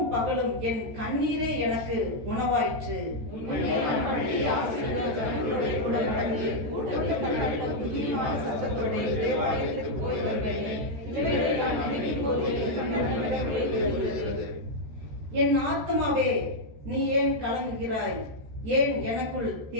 பகலும் என் கண்ணீரே எனக்கு உணவாயிற்று. என் ஆத்மாவே, நீ ஏன் கலங்குகிறாய்? ஏன் எனக்குள்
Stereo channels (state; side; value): late; left; 13 ms